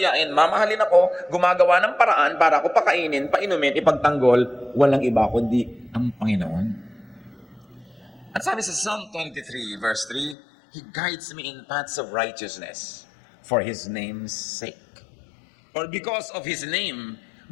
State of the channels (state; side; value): drops out; right; at 10.4 s